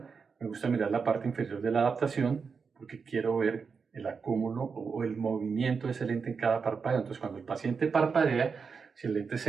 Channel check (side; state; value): left; quieter; 5.5 dB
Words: Me gusta mirar la parte inferior de la adaptación porque quiero ver el acúmulo o el movimiento de ese lente en cada parpadeo. Entonces, cuando el paciente parpadea, si el lente